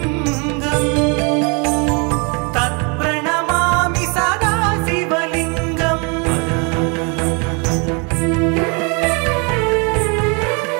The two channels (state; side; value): quieter; left; 33.2 dB